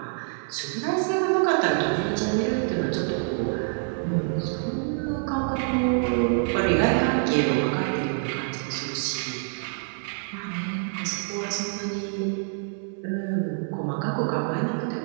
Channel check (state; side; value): silent; left; 61 dB below the other